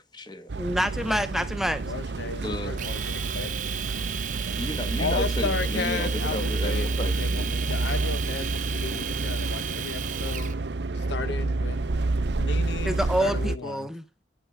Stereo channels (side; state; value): both; normal; correlation 0.64